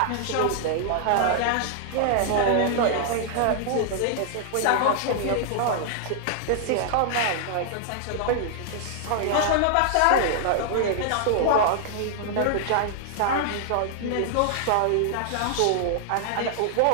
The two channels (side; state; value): both; different; correlation -0.01